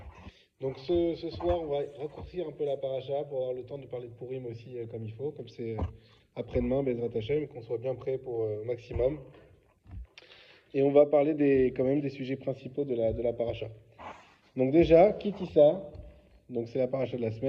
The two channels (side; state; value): both; identical; correlation 1.00